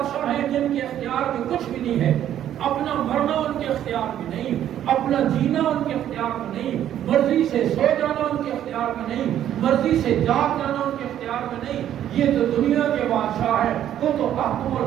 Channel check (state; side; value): quieter; left; 11.1 dB